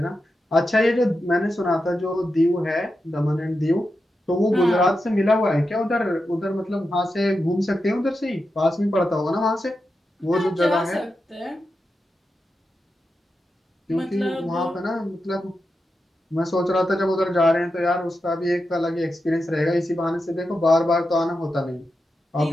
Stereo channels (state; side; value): normal; both; correlation 0.89